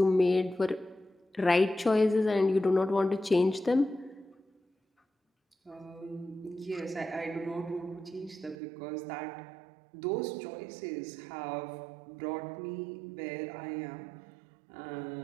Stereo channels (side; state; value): left; drops out; at 8.6 s